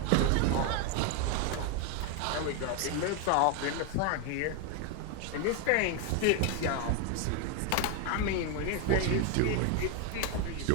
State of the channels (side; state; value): both; different; correlation 0.01